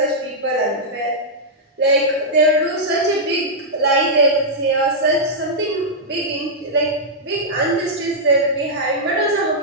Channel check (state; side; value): normal; both; correlation -0.08